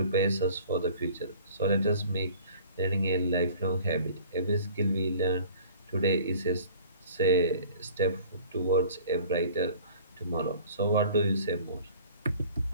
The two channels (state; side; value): inverted; both; correlation -0.49